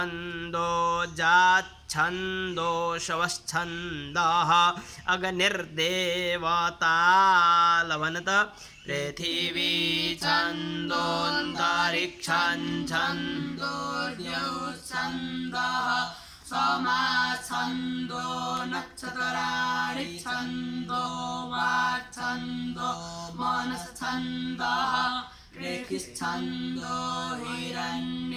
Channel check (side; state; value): both; identical; correlation 1.00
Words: छन्दो शवश्छन्दः अग्निर्देवता लवनत पृथिवी छन्दोऽन्तरिक्षं छन्दो द्यौश्छन्दः समाछन्दो नक्षत्राणि छन्दो वाक्छन्दो मनश्छन्दः रेखिश्छन्दो